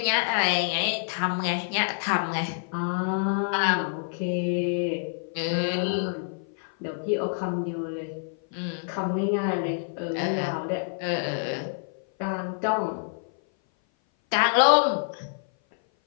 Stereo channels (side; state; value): right; silent; 57 dB below the other